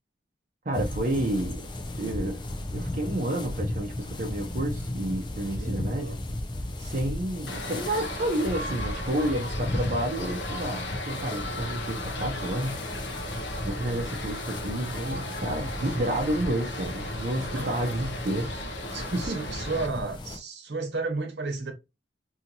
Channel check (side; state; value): both; normal; correlation 0.53